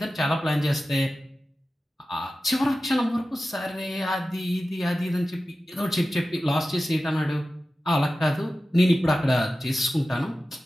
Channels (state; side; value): normal; both; correlation 0.94